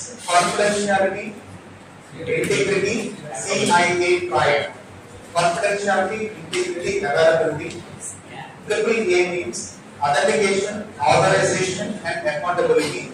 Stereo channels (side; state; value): both; identical; correlation 1.00